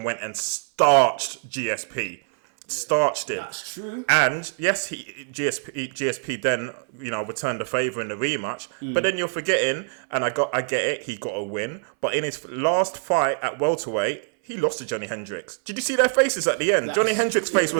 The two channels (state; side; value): silent; left; 60 dB below the other